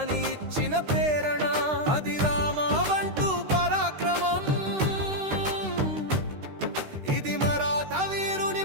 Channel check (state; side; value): late; left; 13 ms